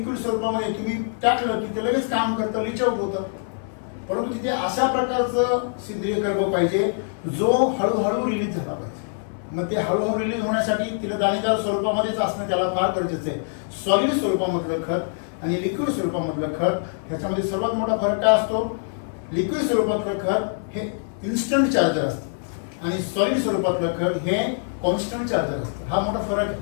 स्वरूपामध्ये तुम्ही टाकलं की ते लगेच काम करतं, लीच आउट होतं. परंतु तिथे अशा प्रकारचं सेंद्रिय कर्ब पाहिजे जो हळूहळू रिलीज झाला पाहिजे. मग ते हळूहळू रिलीज होण्यासाठी तिला दाणेदार स्वरूपामध्येच असणं त्याला फार गरजेचं आहे. सॉलिड स्वरूपामधलं खत आणि लिक्विड स्वरूपामधलं खत ह्याच्यामध्ये सर्वात मोठा फरक काय असतो? लिक्विड स्वरूपातलं खत हे इन्स्टंट चार्जर असतं आणि सॉलिड स्वरूपातलं खत हे कॉन्स्टंट चार्जर असतं. हा मोठा फरक आहे.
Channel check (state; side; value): silent; right; 62 dB below the other